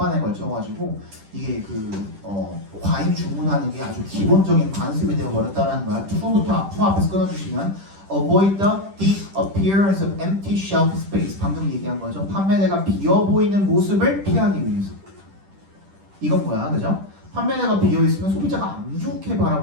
걸쳐가지고 이게 과잉 주문하는 게 아주 기본적인 관습이 되어버렸다는 거야. 투 앞에서 끊어주시면 avoid the appearance of empty shelf space. 방금 얘기한 거죠. 판매대가 비어 보이는 모습을 피하기 위해서. 이건 뭐야, 그죠? 판매대가 비어 있으면 소비자가 안 좋게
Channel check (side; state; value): left; late; 10 ms